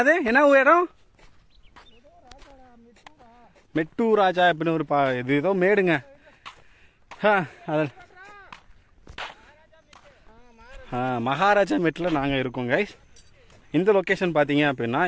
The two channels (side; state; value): both; identical; correlation 1.00